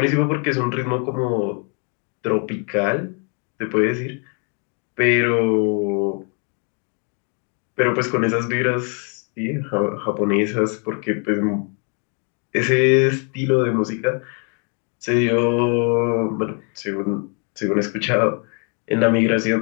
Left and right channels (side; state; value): right; quieter; 39.0 dB